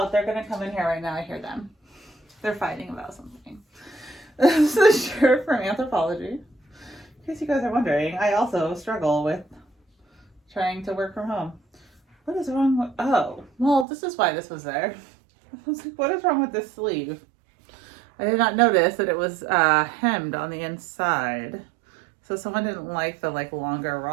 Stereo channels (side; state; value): left; drops out; at 13.9 s